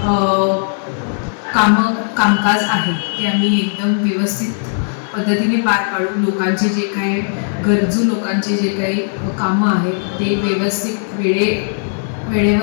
कामकाज आहे ते आम्ही एकदम व्यवस्थित पद्धतीने पार पाडू. लोकांचे जे काही गरजू लोकांचे जे काही कामं आहेत ते व्यवस्थित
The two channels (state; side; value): silent; right; digital silence